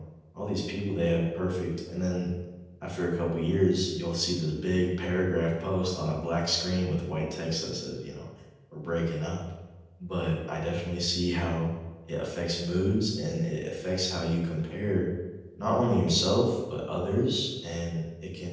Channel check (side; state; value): both; identical; correlation 1.00